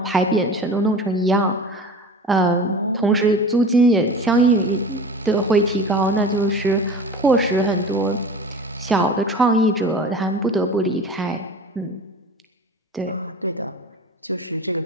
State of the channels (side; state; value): both; normal; correlation 0.36